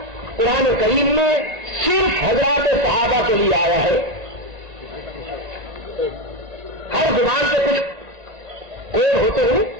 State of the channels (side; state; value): left; late; 1.9 ms